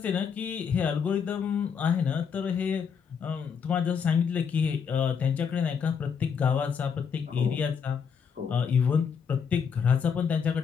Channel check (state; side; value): quieter; right; 6.7 dB